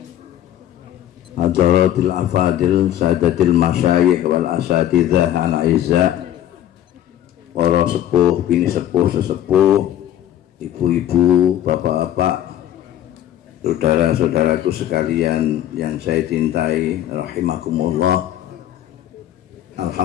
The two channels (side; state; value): right; quieter; 11.8 dB